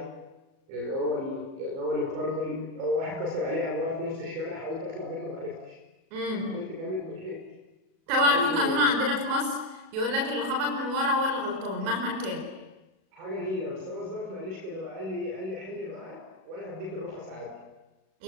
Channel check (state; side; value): late; left; 37 ms